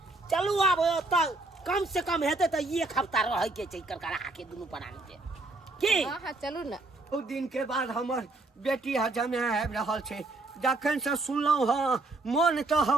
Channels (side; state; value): left; quieter; 3.1 dB